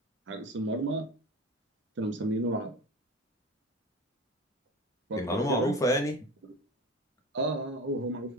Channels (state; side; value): normal; both; correlation 0.32